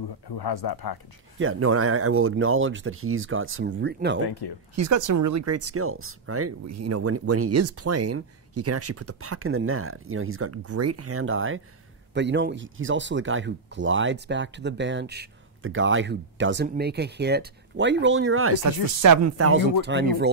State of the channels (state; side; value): quieter; left; 3.9 dB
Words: has that package. Yeah, no, and I will acknowledge that he's got some Thank you. He's got some really great skills, right? You know, when he is playing, he can actually put the puck in the net. You know, he's got great hand-eye, but you know, he's also the guy who glides back to the bench, the guy who doesn't make a hit. Why are you rolling your eyes? That's the 7,000th time you've